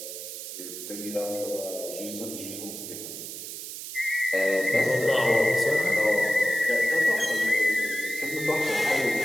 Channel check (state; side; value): noise; right; hiss, 9 dB below the sound